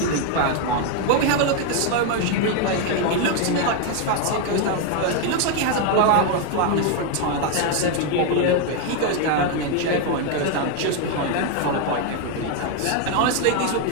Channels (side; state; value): both; different; correlation 0.01